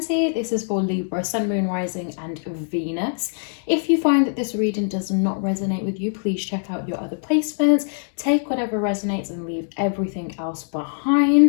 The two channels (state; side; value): silent; right; digital silence